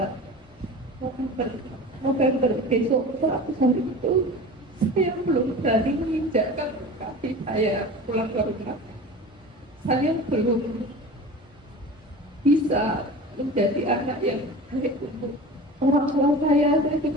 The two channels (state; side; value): normal; both; correlation 0.35